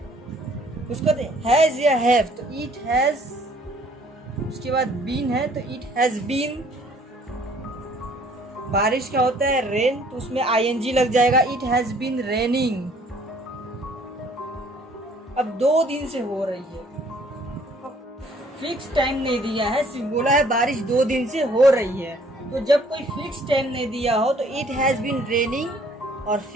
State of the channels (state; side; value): normal; both; correlation 0.59